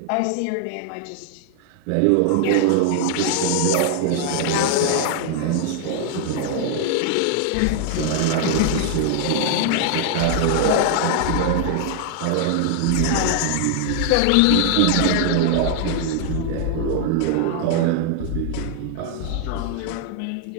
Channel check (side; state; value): both; different; correlation 0.00